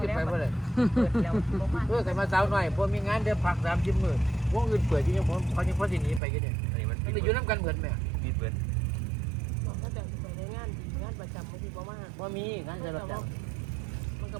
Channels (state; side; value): drops out; left; at 6.2 s